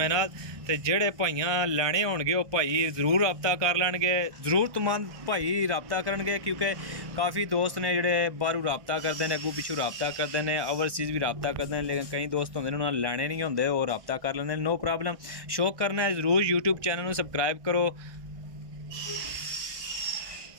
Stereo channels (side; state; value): left; late; 1.6 ms